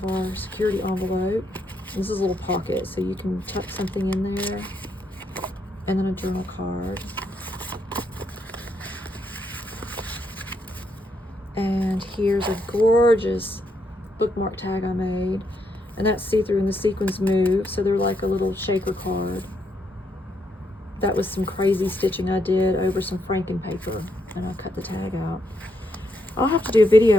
our security envelope. This is a little pocket, so you can tuck something in there. And then a journal card. And here's a gorgeous bookmark tag I made. And that's see-through and the sequins move, so they're like a little shaker card. That was some crazy stitching I did over some franken paper, and I cut the tag out. I'll have to do a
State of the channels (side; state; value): both; normal; correlation 0.78